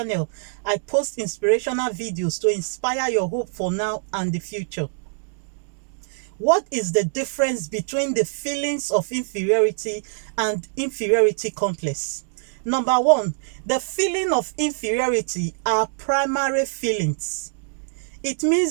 I post inspirational videos to inspire your hope for now and the future. What is the difference between the feelings of inferiority and inferiority complex? Number one, the feeling of inferiority are primary feelings. It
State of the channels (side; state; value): left; silent; digital silence